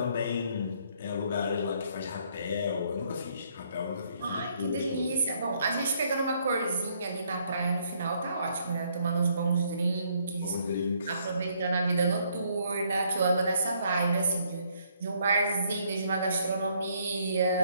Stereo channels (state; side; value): inverted; both; correlation -0.68